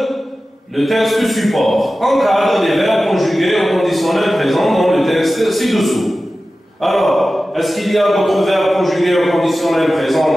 le texte support. Encadre les verbes conjugués au conditionnel présent dans le texte ci-dessous. Alors, est-ce qu'il y a d'autres verbes conjugués au conditionnel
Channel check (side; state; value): both; normal; correlation 0.95